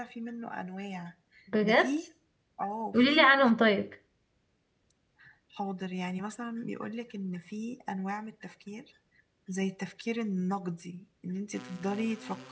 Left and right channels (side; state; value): both; identical; correlation 1.00